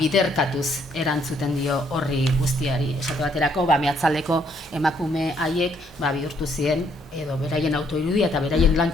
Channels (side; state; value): both; normal; correlation 0.69